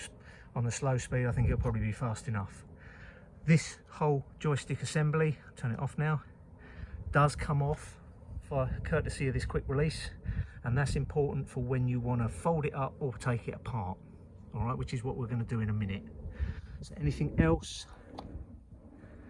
slow speed. I think it'll probably be fast enough. This whole joystick assembly, turn it off now, does come off for courtesy of this quick release, and that's important for when you want to fold it up or take it apart. All right, which is what we're going to do in a minute. So anything else?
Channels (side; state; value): both; identical; correlation 1.00